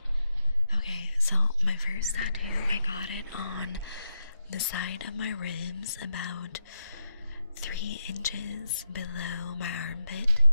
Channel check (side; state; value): both; inverted; correlation -0.86